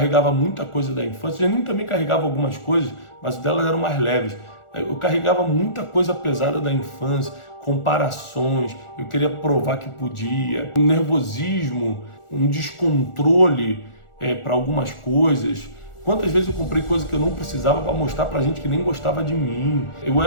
muita coisa da infância, a Janine também carregava algumas coisas, mas delas eram mais leves. Eu carregava muita coisa pesada da infância, comparações, eu queria provar que podia, um nervosismo, um descontrole para algumas coisas. Quantas vezes eu comprei coisa que eu não precisava para mostrar para gente que nem gostava de mim. Eu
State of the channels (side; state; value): right; late; 1.4 ms